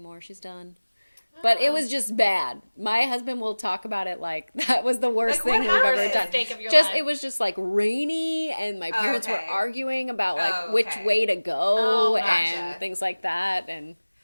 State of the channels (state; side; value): inverted; both; correlation -1.00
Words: She's done. But it was just bad. My husband will talk about it like that was the worst thing we've ever done. It was just like rainy, and my parents were arguing about like which way to go and things like that. And